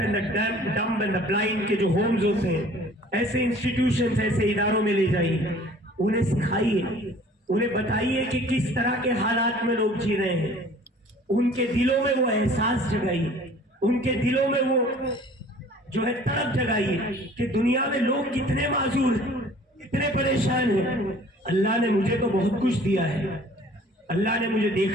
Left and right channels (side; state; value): both; normal; correlation 0.50